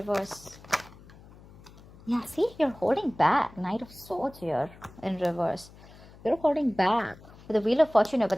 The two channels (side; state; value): left; noise; hum, 21 dB below the sound